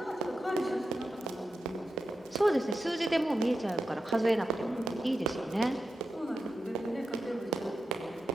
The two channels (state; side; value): normal; both; correlation 0.90